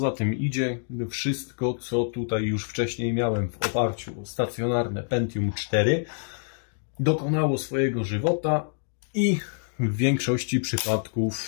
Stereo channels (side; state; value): right; silent; digital silence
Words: tym idzie, wszystko, co tutaj już wcześniej miałem w oparciu o stacjonarne Pentium 4, dokonało swojego żywota i w większości